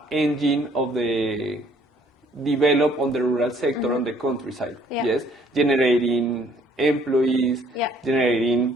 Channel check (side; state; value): both; normal; correlation 0.61